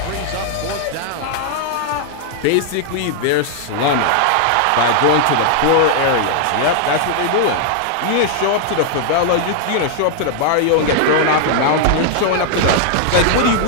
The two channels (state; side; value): different; both; correlation 0.00